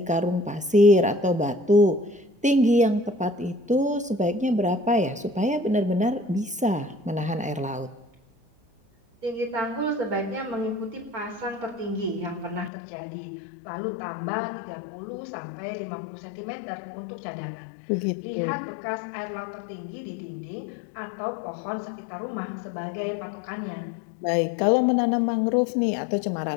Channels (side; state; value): right; drops out; at 12.7 s